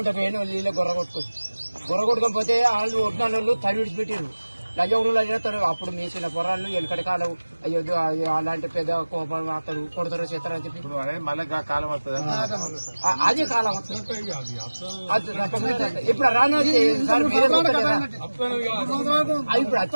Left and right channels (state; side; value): inverted; both; correlation -1.00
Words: పోయిన నీళ్ళు గొర్ర కొట్టుకోకపోతే వాళ్ళు ఒడ్డిన వాళ్ళు తడి విడిచిపెట్టారు. లజవుడు అడిగితారు. అప్పుడు మీసిన పొరాళ్ళు వెనకటి కాలం అయ్యో అలాంటి పెద్ద కోపం అతడు కొడతారు చేస్తారని చెప్పి మళ్ళీ కాలం వస్తుంది. అదే కాలం వస్తుంది. ఇప్పుడు రాను సార్ మీరే ఇప్పుడు